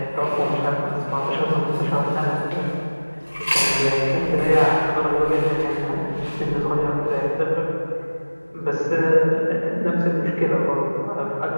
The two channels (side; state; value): both; inverted; correlation -1.00